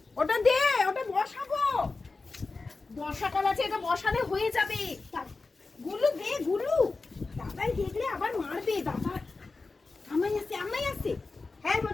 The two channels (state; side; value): quieter; right; 3.8 dB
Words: ওটা দে, ওটা বসাবো। বর্ষাকাল আছে, এটা বসালে হয়ে যাবে। গুলু দে, গুলু। দাদাই দেখলে আবার মারবে। দাদা আমাই আসছে। হ্যাঁ